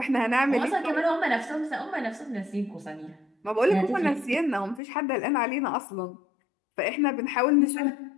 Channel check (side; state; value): right; drops out; at 4.8 s